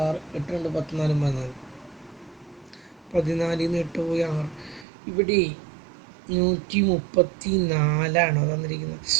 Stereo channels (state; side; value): drops out; left; at 4.9 s